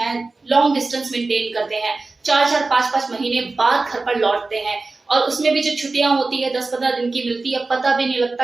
लॉन्ग डिस्टेंस मेंटेन करते हैं, 4-4 5-5 महीने बाद घर पर लौटते हैं, और उसमें भी जो छुट्टियां होती है 10-15 दिन की मिलती है, पता भी नहीं लगता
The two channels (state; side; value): quieter; left; 3.6 dB